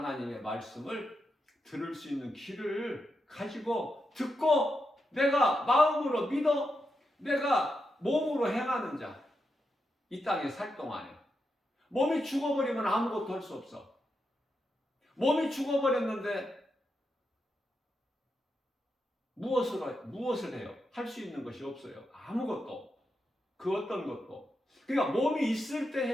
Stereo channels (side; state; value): both; normal; correlation 0.85